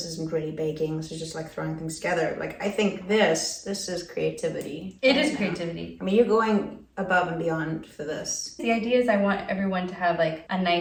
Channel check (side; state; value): both; identical; correlation 1.00